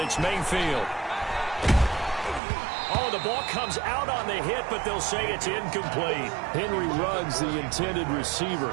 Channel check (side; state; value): left; drops out; at 2.4 s